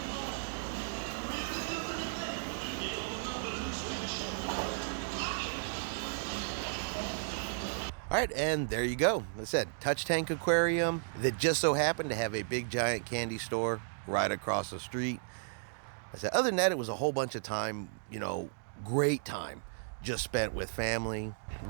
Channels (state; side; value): silent; left; digital silence